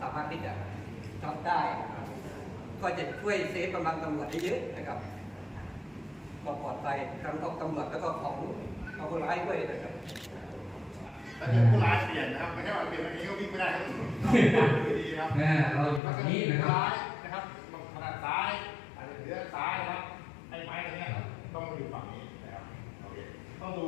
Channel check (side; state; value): right; drops out; at 16.0 s